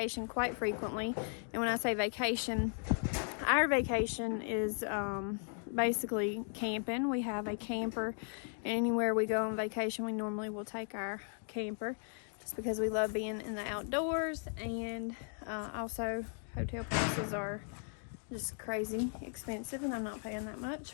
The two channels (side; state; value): right; silent; 53 dB below the other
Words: quite frequently, and when I say vacation, our vacation is basically camping. We have a camper, and anywhere we go on vacation we normally will take our camper just because we love being in the outdoors. And also hotel prices are just crazy expensive and I'm not paying that